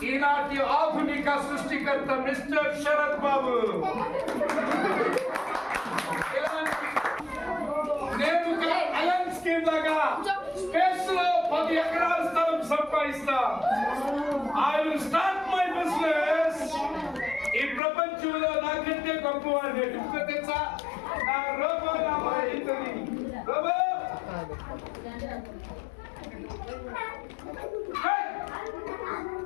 ఈనాటి ఆధునిక సృష్టికర్త మిస్టర్ శరత్ బాబు. నేను అలన్ స్కీమ్ లాగా స్పేస్ లో 10 ఎకరాల స్థలం సంపాదిస్తా. I will start my business. ఈ ప్రపంచంలో నాకంటే గొప్పవాడు ఎందుకు తెలుసా? నా రోబో నా ఇంటది robo.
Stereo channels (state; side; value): drops out; right; at 17.8 s